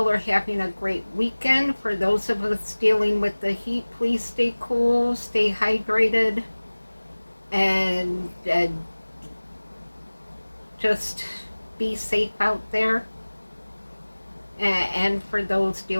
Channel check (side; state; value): both; inverted; correlation -1.00